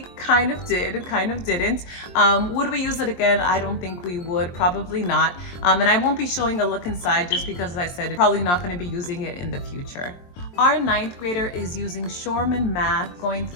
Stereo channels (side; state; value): right; late; 23 ms